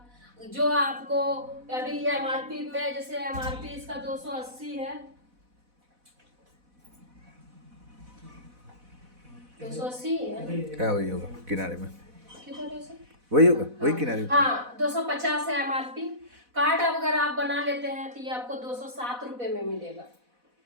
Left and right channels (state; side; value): late; left; 4.1 ms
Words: जो आपको अभी MRP में, जैसे MRP इसका 280 है, 280 है, क्या वही होगा किनारे में, किधर से वही होगा, वही किनारे में। हाँ 250 है MRP। कार्ड अगर आप बना लेते हैं तो ये आपको 207 रुपये में मिलेगा।